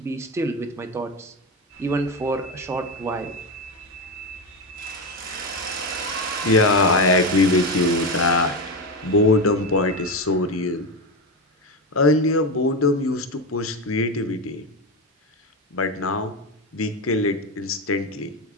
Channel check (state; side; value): normal; both; correlation 0.15